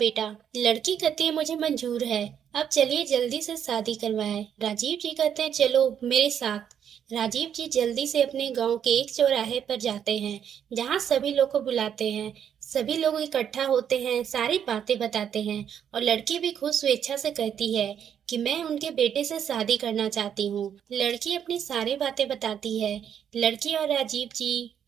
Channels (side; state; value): left; quieter; 8.8 dB